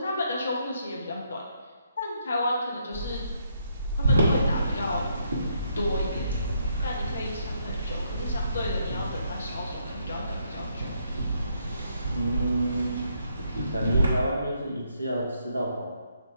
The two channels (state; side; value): inverted; both; correlation -0.73